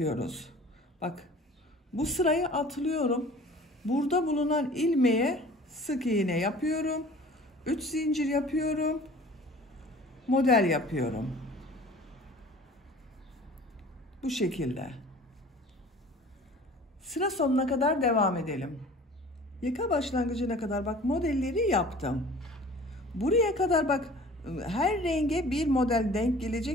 Bak, bu sırayı atlıyorum. Burada bulunan ilmeğe sık iğne yapıyorum. 3 zincir yapıyorum. Model yapıyorum. Bu şekilde. Sıra sonuna kadar devam edelim. Yaka başlangıcına kadar bak modelleri yaptım. Buraya kadar bak, her renge bir model denk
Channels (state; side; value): normal; both; correlation 0.46